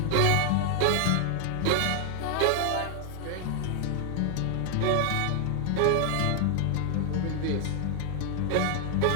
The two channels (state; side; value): different; both; correlation 0.00